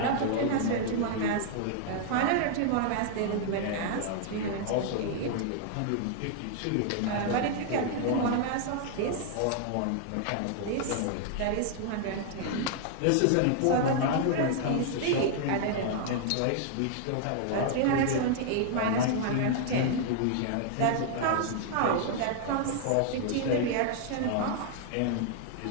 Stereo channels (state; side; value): different; both; correlation -0.01